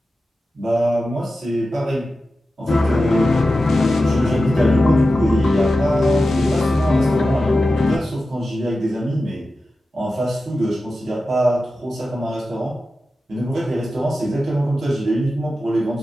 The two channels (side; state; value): both; normal; correlation 0.93